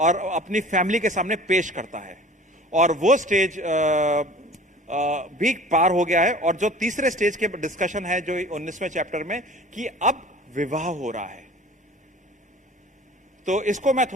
अपनी फैमिली के सामने पेश करता है, और वो स्टेज भी पार हो गया है। और जो तीसरे स्टेज के डिस्कशन है जो 19वें चैप्टर में, कि अब विवाह हो रहा है। तो इसको मैं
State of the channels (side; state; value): both; normal; correlation 0.44